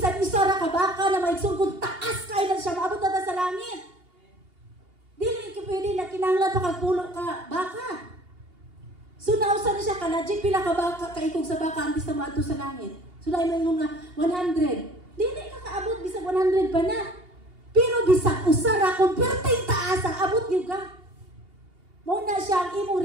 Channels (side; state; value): left; late; 2.8 ms